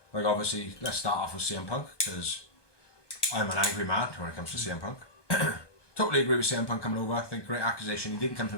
Like obviously, let's start off with CM Punk, because I'm an angry man when it comes to CM Punk. Totally agree with CM Punk coming over. I think great accusation. He didn't come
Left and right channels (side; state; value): right; late; 1.2 ms